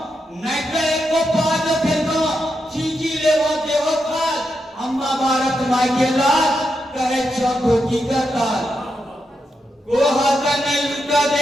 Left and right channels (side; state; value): both; normal; correlation 0.85